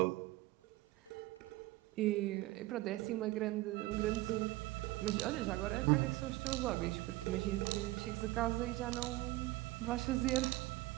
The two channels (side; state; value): left; quieter; 18.9 dB